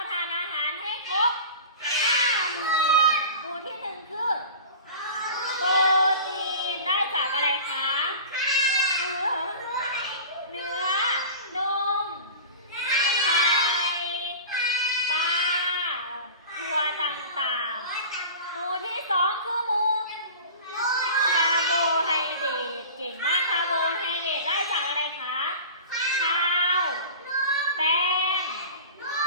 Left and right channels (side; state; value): both; inverted; correlation -0.37